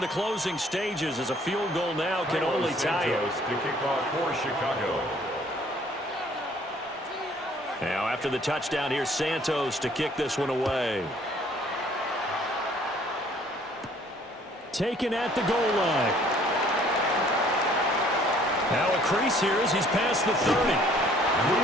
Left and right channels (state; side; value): normal; both; correlation 0.59